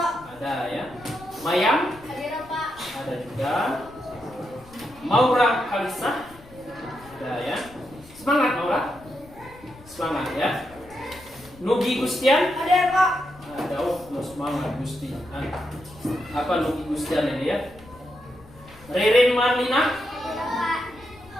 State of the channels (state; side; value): noise; left; rumble, 22 dB below the sound